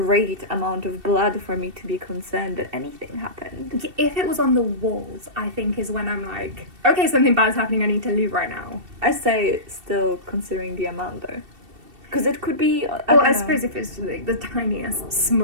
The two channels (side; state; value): left; late; 2.7 ms